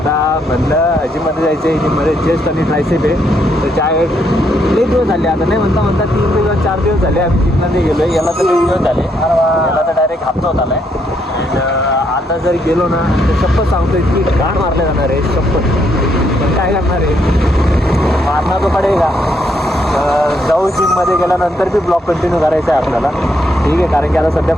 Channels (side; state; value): both; normal; correlation 0.74